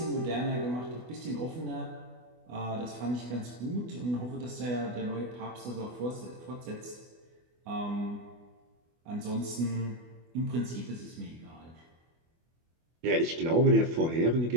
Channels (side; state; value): left; late; 24 ms